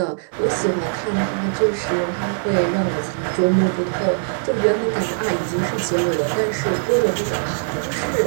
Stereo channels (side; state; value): left; silent; digital silence